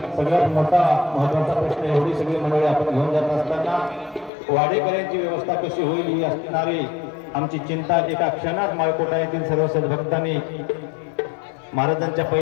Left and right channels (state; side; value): drops out; right; at 4.3 s